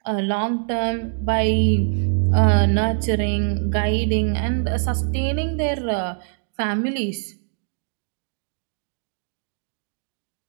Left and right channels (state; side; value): silent; left; digital silence